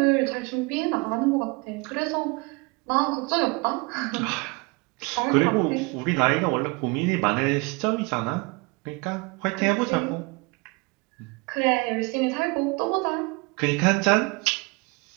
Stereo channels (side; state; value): left; quieter; 28.0 dB